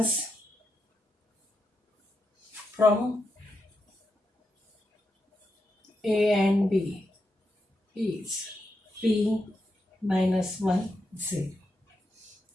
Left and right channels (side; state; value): both; normal; correlation 0.85